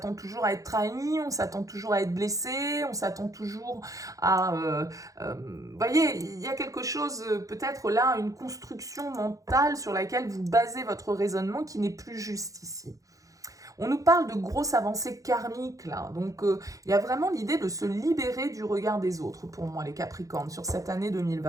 toujours à être trahi, on s'attend toujours à être blessé, on s'attend toujours à... vous voyez, il y a quelque chose, peut-être là, une construction mentale sur laquelle vous basez votre raisonnement qui n'est plus juste ici. On nous parle de grosses avancées karmiques là, donc il y a vraiment l'idée de se libérer du regard des autres pour moi les Capricornes sur cette année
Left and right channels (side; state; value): left; late; 0.16 ms